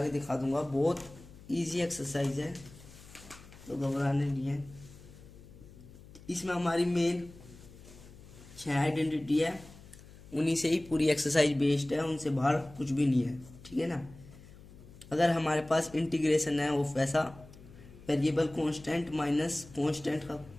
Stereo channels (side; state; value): left; noise; hum, 20 dB below the sound